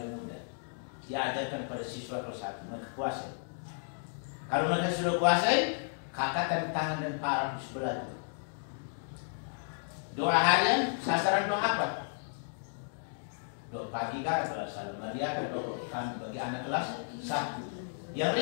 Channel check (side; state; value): right; silent; digital silence